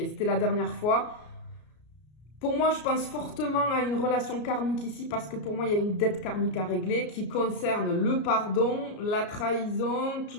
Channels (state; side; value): late; right; 33 ms